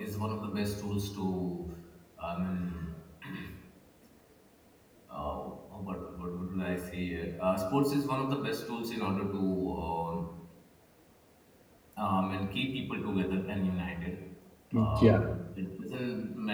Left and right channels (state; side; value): identical; both; correlation 1.00